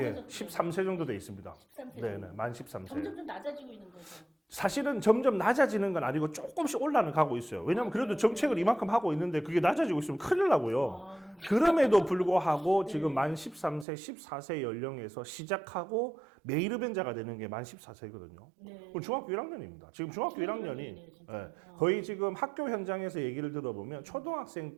13세 정도 돼 있습니다. 13세 정도. 네네, 만 13세. 점점 좀 낮아지고 있는 거죠. 사실은 점점 낮아지는 건 아니고 조금씩 올라가고 있어요. 왜냐면 아, 그래도 그래요? 정책을 네. 이만큼 하고 있는데 그게 낮아지고 있으면 큰일 나고요. 아. 그럼에도 불구하고 네. 지금 만 13세, 14세 연령에서 시작하고 매일 흡연자가 되는 게 만 14세거든요. 네. 중학교 1학년입니다. 지금 중학교 중학교 1학년이 1학년이네요, 진짜. 거의 지금 학교 현장에서 얘기를 들어보면 초등학생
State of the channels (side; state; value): left; drops out; at 13.9 s